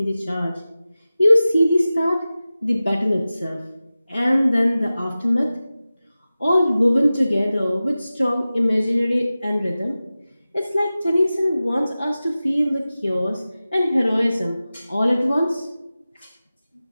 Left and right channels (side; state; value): both; inverted; correlation -0.96